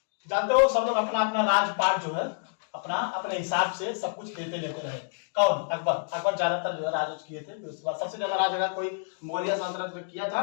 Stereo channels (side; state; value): right; silent; digital silence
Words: जानते हो सब लोग अपना अपना राजपाट जो है अपना अपने हिसाब से सब कुछ लेते रहे। कौन? अकबर। अकबर ज्यादातर जो है राज किए थे। उसके बाद सबसे ज्यादा राज अगर कोई मौर्य सल्तनत में किया